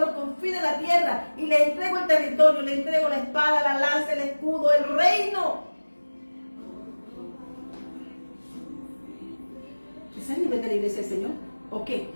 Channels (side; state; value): both; inverted; correlation -1.00